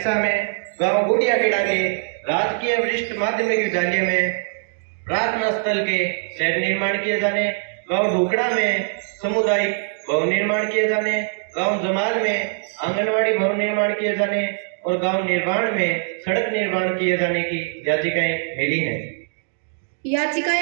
में गांव गुड़ियाखेड़ा के राजकीय वरिष्ठ माध्यमिक विद्यालय में प्रार्थना स्थल के शेड निर्माण किए जाने, गांव ढुकड़ा में सामुदायिक भवन निर्माण किए जाने, गांव जमाल में आंगनवाड़ी भवन निर्माण किए जाने और गांव निर्माण में सड़क निर्माण किए जाने की याचिकाएं मिली हैं।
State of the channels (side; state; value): left; silent; 64 dB below the other